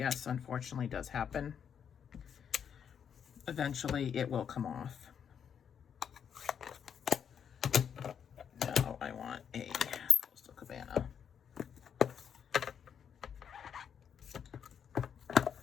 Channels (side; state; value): right; quieter; 7.9 dB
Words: unfortunately does happen. Eventually it will come off. Now I want a Coastal Cabana.